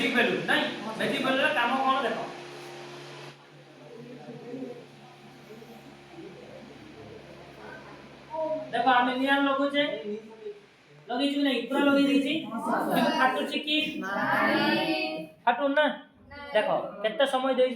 बेलून नहीं मैजिक बेलून काम कौन देखो देखो आम नियान लगुचे लगी छु नहीं पूरा लगी दी छी फाटु छी कि नहीं फाटु ना देखो केते समय देई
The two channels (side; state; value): both; identical; correlation 1.00